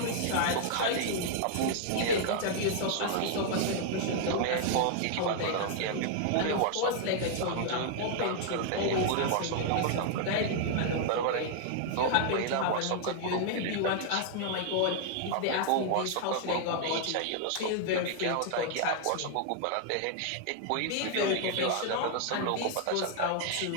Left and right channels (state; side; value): different; both; correlation 0.00